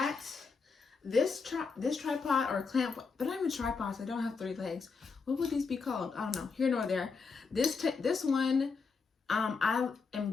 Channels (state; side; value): quieter; right; 4.9 dB